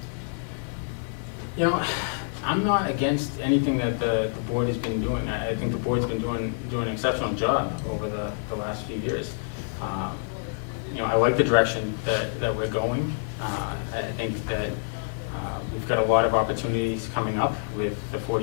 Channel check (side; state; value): right; silent; 60 dB below the other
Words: I'm not against anything that the board has been doing. I think the board's been doing an exceptional job over the last few years. I like the direction that we're going. I think that we've got a lot of opportunities coming up with the